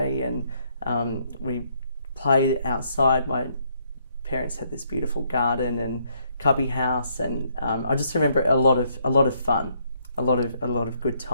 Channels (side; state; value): both; inverted; correlation -0.72